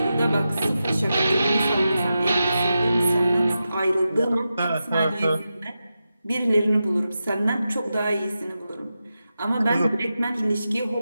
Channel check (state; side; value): inverted; both; correlation -0.90